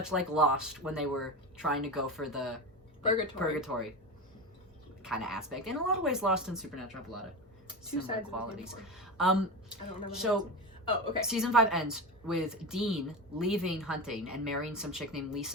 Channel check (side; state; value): both; normal; correlation 0.23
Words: like Lost when they were trying to go for the purgatory kind of aspect. In a lot of ways, Lost and Supernatural have a lot of Two similar sides qualities. Of the coin. I don't know. So okay. season 5 ends with Dean leaving hunting and marrying some chick named